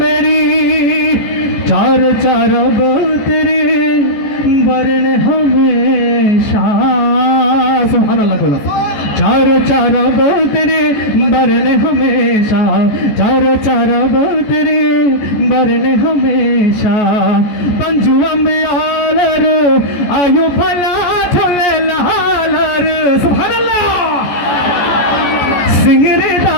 मेरी चार चार अब तेरे वर्ण हमेशा सुभान अल्लाह बोला चार चार अब तेरे वर्ण हमेशा चार चार अब तेरे वर्ण हमेशा पंजू अम्बियालर आयु भला थोले लालर सुभान अल्लाह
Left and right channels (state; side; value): late; right; 14 ms